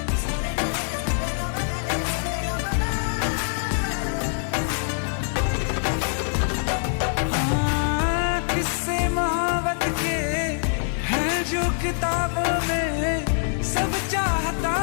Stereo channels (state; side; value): silent; right; digital silence